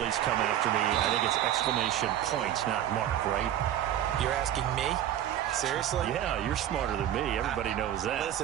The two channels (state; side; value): quieter; left; 11.4 dB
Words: come after me, I think it's exclamation point, not mark, right? You're asking me? Seriously? Yeah, you're smarter than me. Everybody knows that.